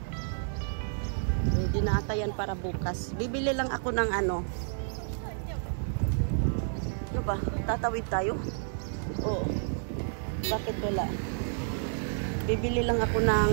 Ready na ata yan para bukas. Bibili lang ako ng ano. Ano ba? Tatawid tayo? Oo. Bakit wala? Bibili lang ako ng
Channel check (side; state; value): left; silent; 58 dB below the other